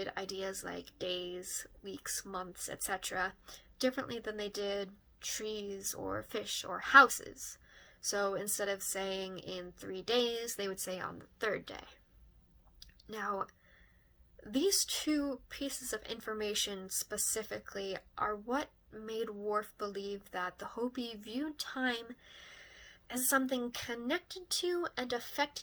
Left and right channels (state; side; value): identical; both; correlation 1.00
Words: ideas like days, weeks, months, etc. differently than they did trees or fish or houses. So instead of saying in 3 days, they would say on the 3rd day. Now, these two pieces of information specifically are what made Whorf believe that the Hopi viewed time as something connected to and